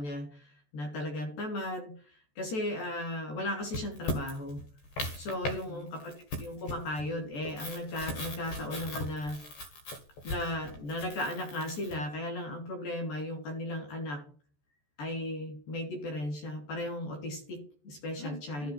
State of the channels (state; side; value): late; right; 14 ms